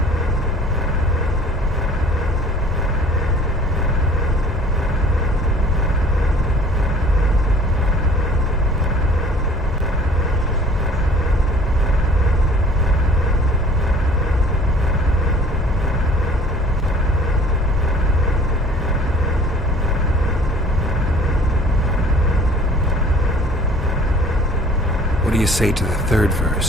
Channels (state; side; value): normal; both; correlation 0.50